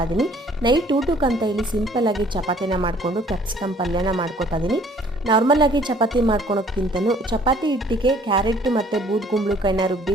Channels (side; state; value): both; normal; correlation 0.57